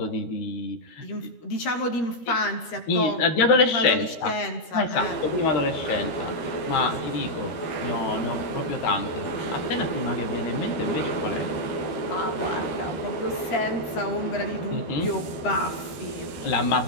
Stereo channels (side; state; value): right; late; 13 ms